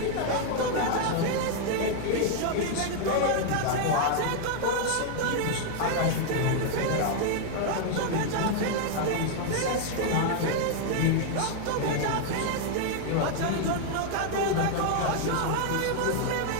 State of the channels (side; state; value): both; different; correlation 0.00